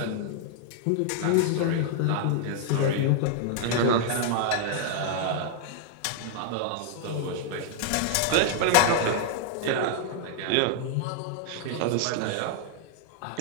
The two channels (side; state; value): both; different; correlation -0.01